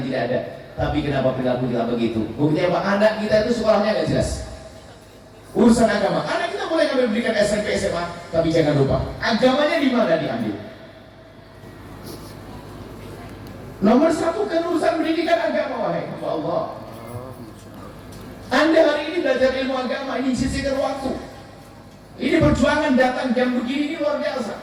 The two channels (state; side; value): identical; both; correlation 1.00